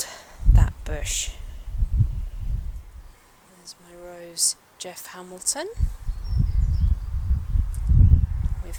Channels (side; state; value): both; identical; correlation 1.00